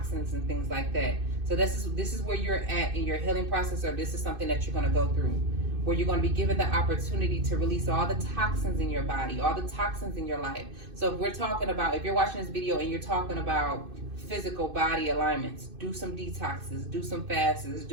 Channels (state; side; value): late; left; 2.5 ms